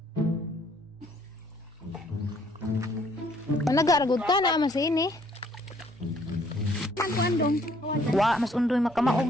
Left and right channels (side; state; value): both; normal; correlation 0.63